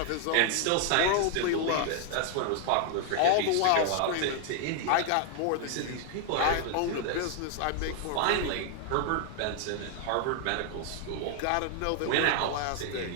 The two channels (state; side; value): different; both; correlation 0.00